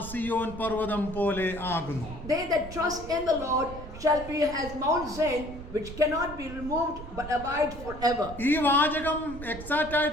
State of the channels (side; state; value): right; noise; rumble, 12 dB below the sound